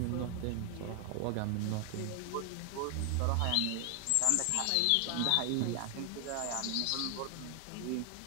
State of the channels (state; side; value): different; both; correlation 0.00